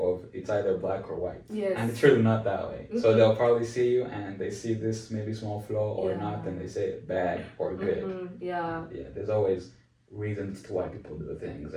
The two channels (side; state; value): both; identical; correlation 1.00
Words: it's either black or white. Yes. And it's really not that way. So they'll probably see you and they see this maybe small flaw or not, and they say bad or good. Yeah. Yeah, there's always reasons to why people do things,